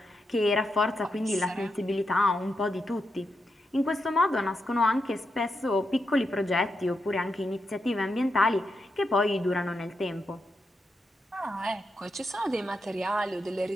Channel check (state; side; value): normal; both; correlation 0.85